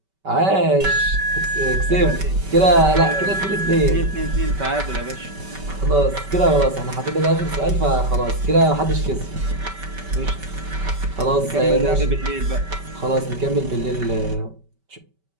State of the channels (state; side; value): late; left; 5.2 ms